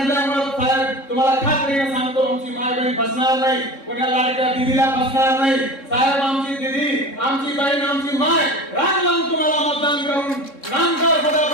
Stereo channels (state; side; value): late; right; 3.7 ms